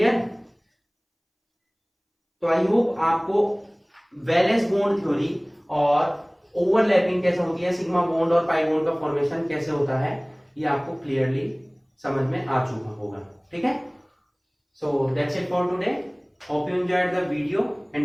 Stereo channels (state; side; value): identical; both; correlation 1.00